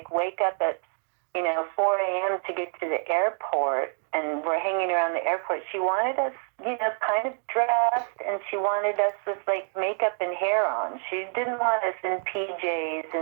wake up at 4 a.m. to get to the airport and we're hanging around the airport. She wanted us, kind of dressed, and she wanted us with makeup and hair on. She didn't want us in PJs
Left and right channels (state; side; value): silent; left; 60 dB below the other